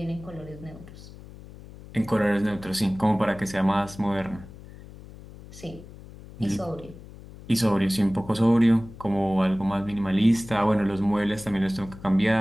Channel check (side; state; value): left; noise; hum, 17 dB below the sound